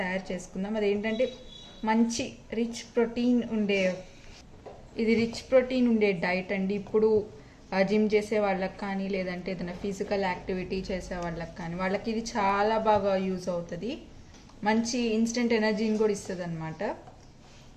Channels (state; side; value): identical; both; correlation 1.00